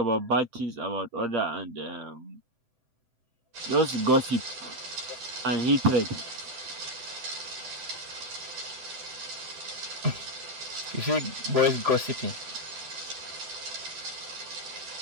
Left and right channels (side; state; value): left; late; 7.8 ms